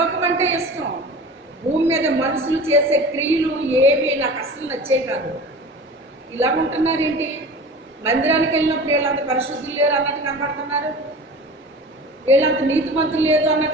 అంటే ఇష్టం. భూమి మీద మనుషులు చేసే క్రియలు ఏవి నాకు అసలు నచ్చే కాదు. ఇలా ఉంటున్నారేంటి? మందిరానికి వెళ్ళినప్పుడు వీళ్ళంత పరిశుద్ధులు లేరు అన్నట్టు కనబడుతున్నారు, వీళ్ళంత నీతిమంతులు లేదు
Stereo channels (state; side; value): normal; both; correlation 0.37